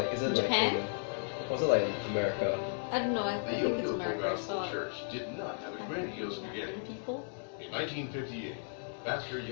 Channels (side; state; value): right; silent; digital silence